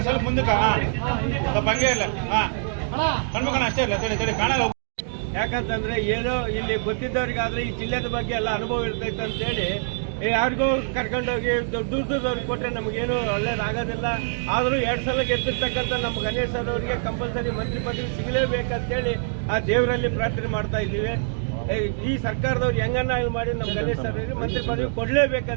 ಸ್ವಲ್ಪ ಮುಂದಕ್ಕೆ ಸ್ವಲ್ಪ ಹಂಗೆ ಇಲ್ಲ ಕಣ್ಮಕಣ ಅಷ್ಟೇ ಇಲ್ಲ ತಡಿ ಕಾಣಲ್ಲ. ಯಾಕಂತಂದ್ರೆ ಏನೋ ಇಲ್ಲಿ ಗೊತ್ತಿದ್ದವ್ರಿಗಾದ್ರೆ ಈ ಜಿಲ್ಲೆದ ಬಗ್ಗೆ ಎಲ್ಲ ಅನುಭವ ಇರ್ತೈತೆ ಅಂತೇಳಿ ಯಾರಿಗೂ ಕರ್ಕೊಂಡೋಗಿ ದೂರದವ್ರಿಗೆ ಕೊಟ್ಟರೆ ನಮಗೇನು ಒಳ್ಳೇದಾಗೋದಿಲ್ಲ. ಆದರೂ 2 ಸಲ ಗೆದ್ದಿರ್ತಕ್ಕಂಥ ನಮ್ಮ ಗಣೇಶ್ ಸರ್ ಅವರಿಗೆ ಕಂಪಲ್ಸರಿ ಮಂತ್ರಿ ಪದವಿ ಸಿಗಲೇಬೇಕಂತೇಳಿ ಆ ದೇವರಲ್ಲಿ ಪ್ರಾರ್ಥನೆ ಮಾಡ್ತಾ ಇದ್ದೀವಿ. ಈ ಸರ್ಕಾರದವ್ರು ಹೆಂಗನ್ನ ಮಾಡಿ ನಮ್ಮ ಗಣೇಶ್ ಸರ್ ಅವರಿಗೆ ಮಂತ್ರಿ ಪದವಿ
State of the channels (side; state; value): left; silent; digital silence